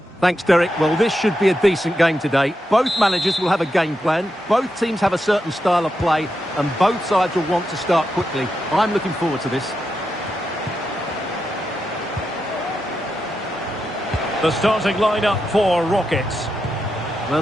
Thanks, Derek. Well, this should be a decent game today. Both managers will have a game plan. Both teams have a certain style of play, and both sides will want to start quickly. I'm looking forward to this. The starting lineup for Rockets. Well,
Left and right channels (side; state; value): both; normal; correlation 0.86